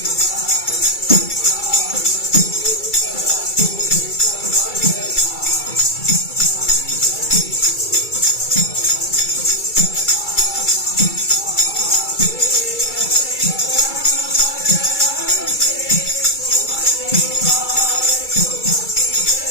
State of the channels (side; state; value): right; late; 2.3 ms